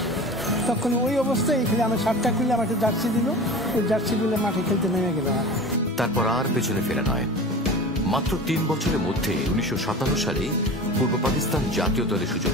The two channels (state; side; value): normal; both; correlation 0.35